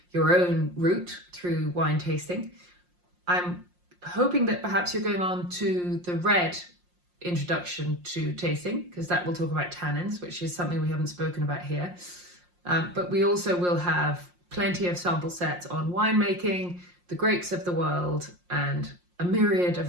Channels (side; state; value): left; late; 5.6 ms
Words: your own route through wine tasting. I'm hoping that perhaps you're going on to the red introduction to tasting, because that will talk about tannins, which is something we haven't spoken about here. But we also will have plenty of sample sets on winemaking, the grapes of the world, and a myriad of